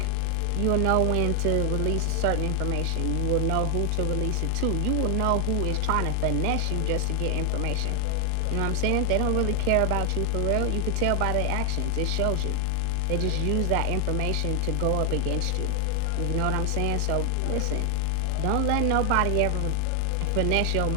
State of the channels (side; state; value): both; different; correlation 0.00